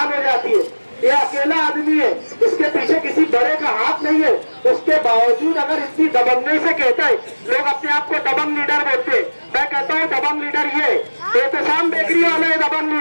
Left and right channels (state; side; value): inverted; both; correlation -1.00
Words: हो जाती है। ये अकेला आदमी है, इसके पीछे किसी बड़े का हाथ नहीं है। उसके बावजूद अगर इतनी दबंगई से कहता है, लोग अपने आप को दबंग लीडर बोलते हैं। मैं कहता हूँ दबंग लीडर ये एहतशाम बेकरी वाला है, दबंग